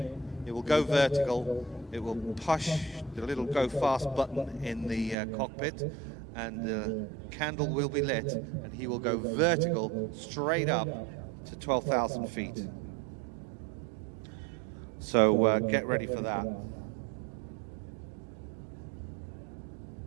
it will go vertical, it will push the little go fast button in the cockpit, and the candle will be lit, and he will go vertical straight up to 12,000 feet. So get ready for that.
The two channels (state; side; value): drops out; left; at 5.2 s